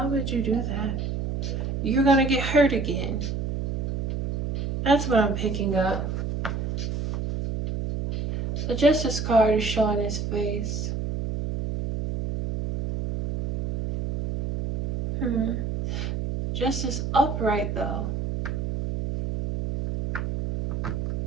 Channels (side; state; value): right; noise; hum, 3 dB below the sound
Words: would you do that? you're going to get hurt again. That's what I'm picking up. The Justice card is showing his face. Justice upright though.